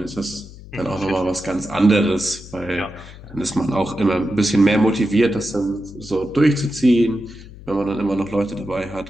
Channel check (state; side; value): noise; left; hum, 17 dB below the sound